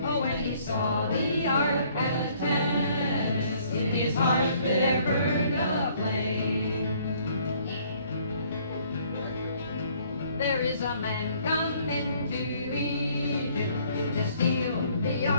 Oh, when he saw the ark at Tanis, in his heart there burned a flame. There is a man come into Egypt to steal the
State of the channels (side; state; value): both; inverted; correlation -0.61